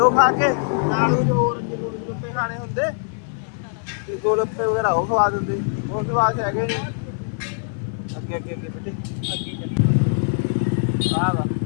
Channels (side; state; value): right; silent; 59 dB below the other